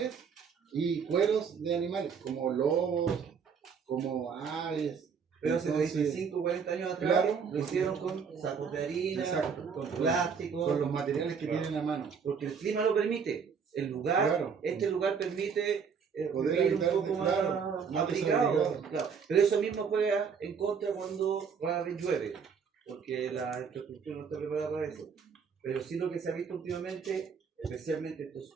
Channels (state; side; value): quieter; left; 6.3 dB